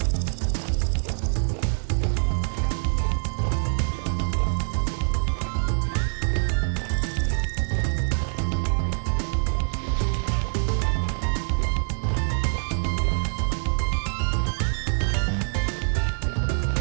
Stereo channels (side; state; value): left; silent; 62 dB below the other